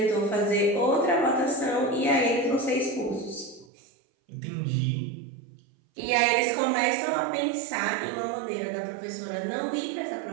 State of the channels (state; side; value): drops out; left; at 3.7 s